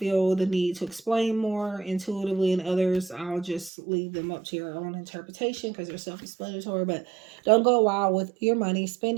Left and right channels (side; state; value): left; drops out; at 3.7 s